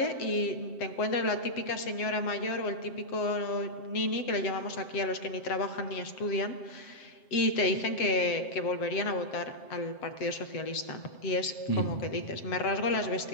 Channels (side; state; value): right; late; 7.6 ms